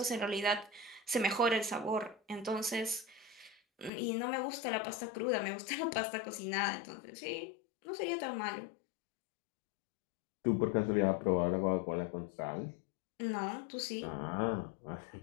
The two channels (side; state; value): right; drops out; at 3.9 s